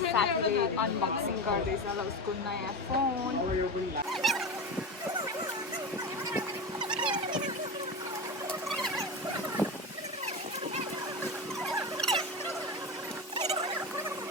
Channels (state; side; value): normal; both; correlation 0.23